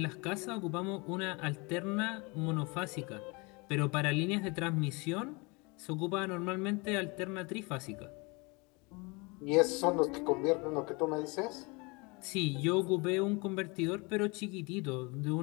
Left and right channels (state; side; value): quieter; right; 28.0 dB